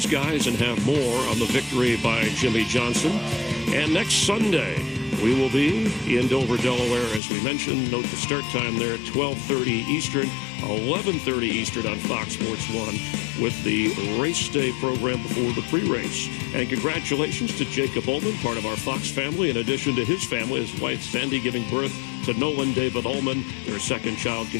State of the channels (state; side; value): drops out; right; at 7.2 s